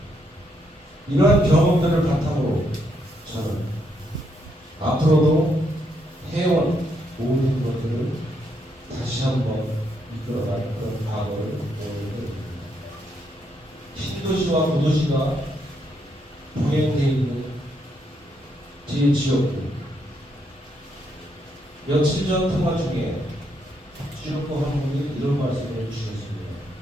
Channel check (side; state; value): both; normal; correlation 0.76